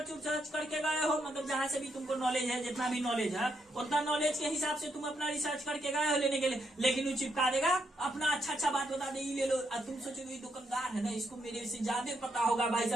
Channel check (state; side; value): normal; both; correlation 0.78